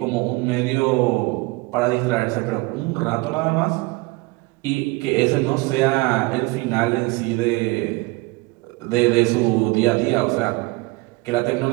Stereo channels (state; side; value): quieter; left; 24.0 dB